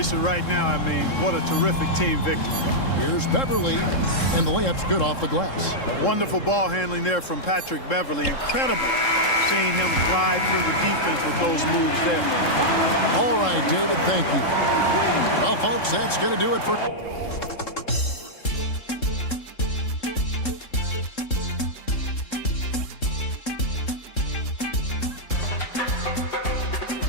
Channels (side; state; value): right; late; 3.7 ms